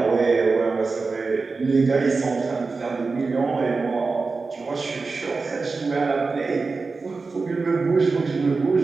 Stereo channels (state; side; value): quieter; left; 4.1 dB